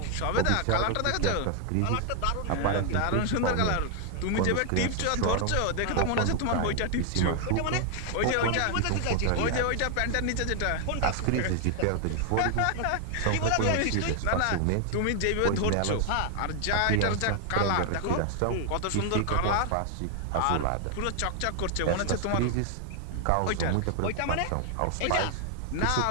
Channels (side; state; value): both; different; correlation 0.00